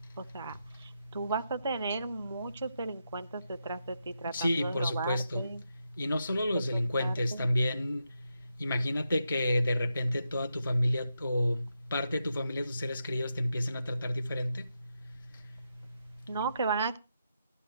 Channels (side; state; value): both; inverted; correlation -0.85